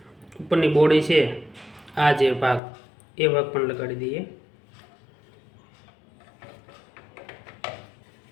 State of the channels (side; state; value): right; drops out; at 2.6 s